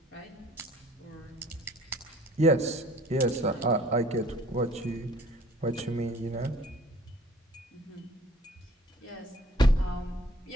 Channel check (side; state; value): both; normal; correlation 0.53